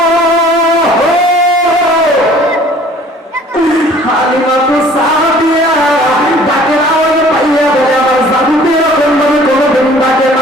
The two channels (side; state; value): both; normal; correlation 0.52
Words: হালিমাতুস সাদিয়া ডাকের আওয়াজ পাইয়া বলে আমার জাদুতে এরকম ভাবে কোনোদিন ডাকে